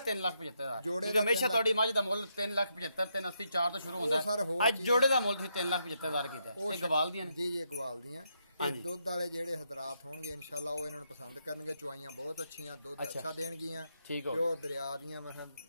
ਜੋੜੇ ਕਿਉਂਕਿ ਹਮੇਸ਼ਾ ਤੁਹਾਡੀ ਮੱਝ ਦਾ ਮੁੱਲ 3,75,000 380 4 ਤੋਂ ਸ਼ੁਰੂ ਹੁੰਦਾ ਹੈ। ਅੱਜ ਜੋੜੇ ਦਾ ਮੁੱਲ ਤੁਸੀਂ 3,75,000 ਕੀਤਾ। ਇਹ ਗਵਾਲ ਦੀਆਂ ਨੇ ਜੀ ਜੀ ਗਵਾਲ ਦੀਆਂ। ਇਹ ਦੁੱਧ ਵਾਲੇ ਜਿਹੜੇ ਹਜ਼ਰਾਤ ਹੋਣਗੇ ਇਨਸ਼ਾਅੱਲਾ ਉਹ ਇਹਨਾਂ ਨੂੰ ਪਸੰਦ ਕਰਨਗੇ। ਚੁਆਈਆਂ ਬਹੁਤ ਅੱਛੀਆਂ, ਦੁੱਧ ਅੱਛਾ ਦੇਣਗੀਆਂ। ਠੀਕ ਹੋ ਪਿਓਰ ਦਰਿਆ ਦੀਆਂ ਮਸਲ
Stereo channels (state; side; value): inverted; both; correlation -0.80